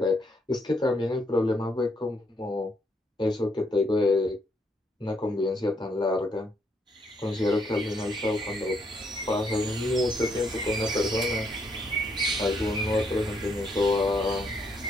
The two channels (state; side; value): normal; both; correlation 0.73